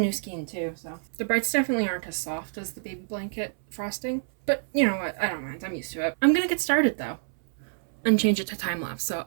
skein too, so. The brights definitely aren't as soft as the baby blanket frosting, but you know what, I don't mind, I'm used to it. I'm gonna get started though, and change it to time lapse, so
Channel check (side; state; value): left; silent; 60 dB below the other